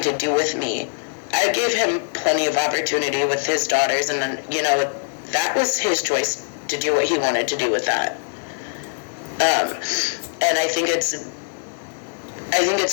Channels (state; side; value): silent; right; digital silence